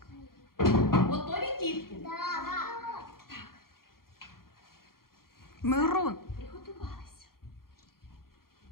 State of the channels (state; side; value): late; right; 0.92 ms